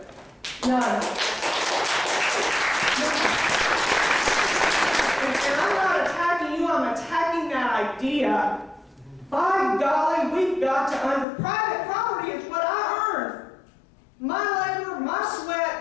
None. And I'm not attacking you, I'm attacking that idea. By golly, we've got to private property is what I earned. My labor, my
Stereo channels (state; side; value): drops out; right; at 11.2 s